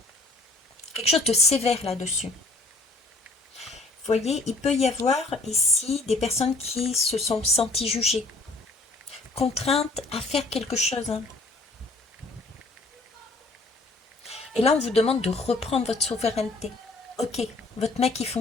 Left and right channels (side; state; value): right; quieter; 3.0 dB